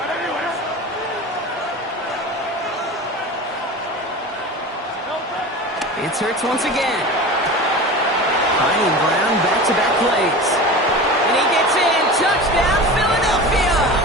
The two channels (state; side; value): normal; both; correlation 0.32